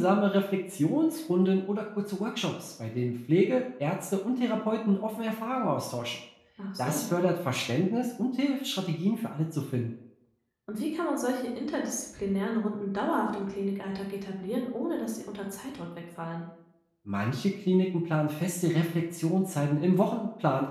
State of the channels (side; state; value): both; identical; correlation 1.00